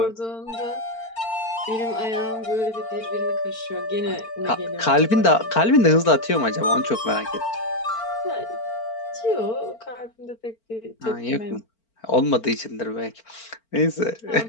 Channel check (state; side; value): late; right; 4.4 ms